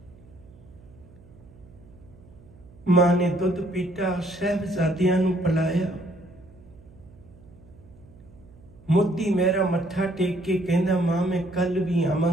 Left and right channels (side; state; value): right; noise; hum, 24 dB below the sound